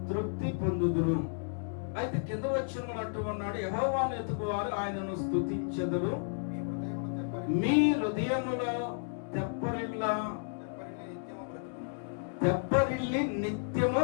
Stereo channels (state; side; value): silent; right; digital silence